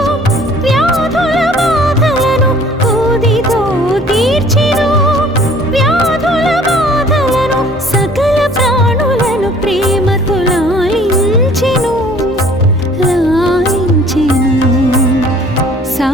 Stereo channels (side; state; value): both; normal; correlation 0.54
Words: వ్యాధుల బాధలను, ఊదితో తీర్చెను వ్యాధుల బాధలను. సకల ప్రాణులను ప్రేమతో లాలించెను, లాలించెను.